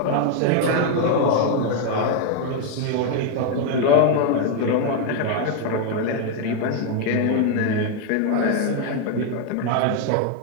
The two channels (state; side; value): different; both; correlation 0.01